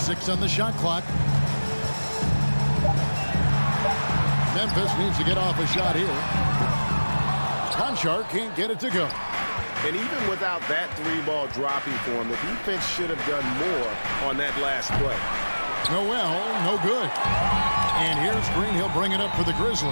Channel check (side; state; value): both; inverted; correlation -1.00